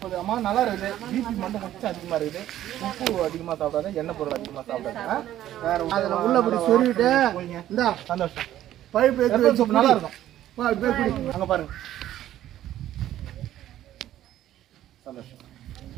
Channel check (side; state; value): left; quieter; 12.7 dB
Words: அம்மா நல்லா இருக்குது. பிபி மட்டும் கொஞ்சம் அதிகமாக இருக்குது. உப்பு அதிகமாக சாப்பிடாத, எண்ணெய் பொருள் அதிகமாக சாப்பிடாத. வேற அதில் உள்ளபடி சொருவிட்டு இந்தா சந்தோஷம். பழுப்பு எடுத்து சோப்பு நல்லா இருக்கும். குடி. அங்கே பாருங்க. சந்தோஷம்.